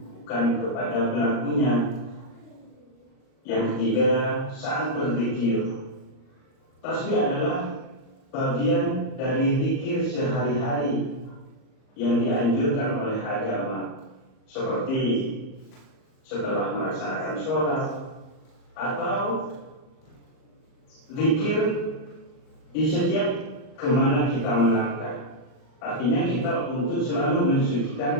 bukan kepada pelakunya. Yang ketiga, saat berzikir. Tasbih adalah bagian dari zikir sehari-hari yang dianjurkan oleh agama, seperti setelah melaksanakan sholat atau zikir di setiap kemana kita melangkah. Artinya kita untuk selalu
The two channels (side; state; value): right; late; 38 ms